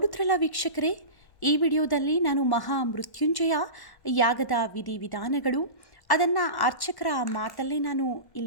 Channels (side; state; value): right; late; 1.1 ms